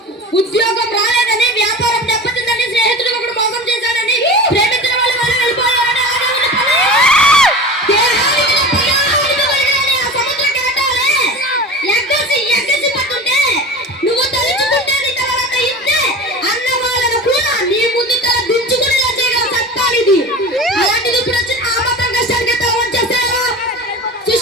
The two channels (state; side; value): normal; both; correlation 0.32